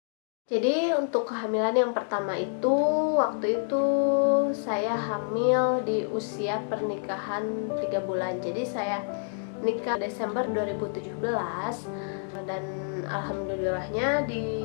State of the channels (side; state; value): right; silent; digital silence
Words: Jadi untuk kehamilan yang pertama itu, waktu itu saya hamil di usia pernikahan 3 bulan. Jadi saya nikah Desember 2017 dan alhamdulillahnya di